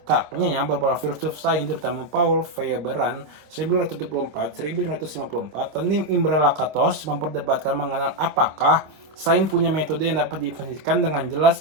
beberapa filsuf sains, terutama Paul Feyerabend 1974-1954 dan Imre Lakatos memperdebatkan mengenai apakah sains punya metode yang dapat didefinisikan dengan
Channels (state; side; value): late; left; 26 ms